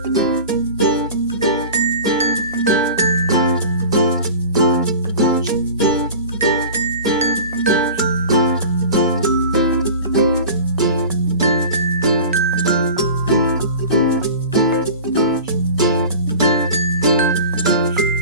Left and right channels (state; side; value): inverted; both; correlation -0.37